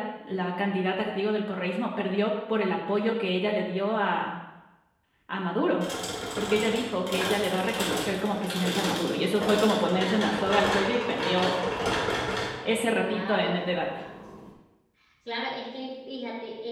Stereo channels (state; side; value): identical; both; correlation 1.00